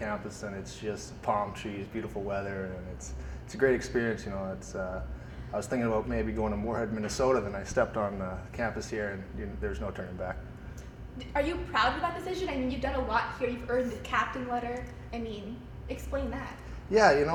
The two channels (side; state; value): both; identical; correlation 1.00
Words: and it's just palm trees, beautiful weather, and it's a great experience. You know, I was thinking about maybe going to Moorhead, Minnesota, then I stepped on campus here, and there's no turning back. Are you proud of that decision? I mean, you've done a lot here. You've earned the captain letter. I mean, explain that. Yeah, you